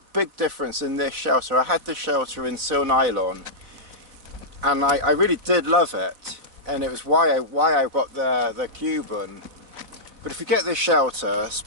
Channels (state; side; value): late; left; 4.0 ms